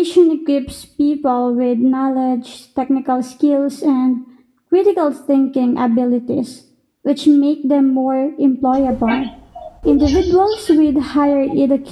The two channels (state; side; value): identical; both; correlation 1.00